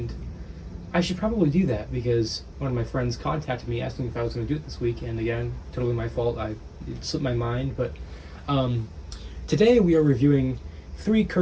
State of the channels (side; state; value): both; identical; correlation 1.00